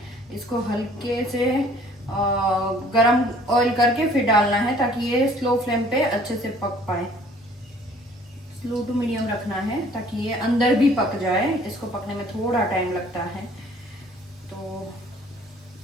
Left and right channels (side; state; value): both; normal; correlation 0.55